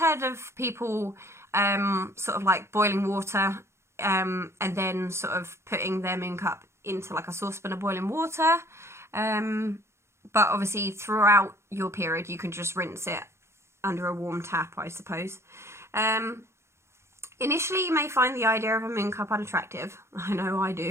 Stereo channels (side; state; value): left; late; 0.13 ms